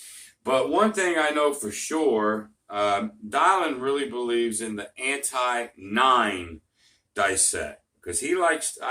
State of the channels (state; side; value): identical; both; correlation 1.00